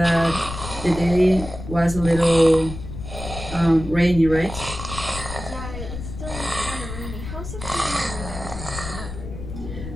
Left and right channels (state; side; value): noise; left; rumble, 9 dB below the sound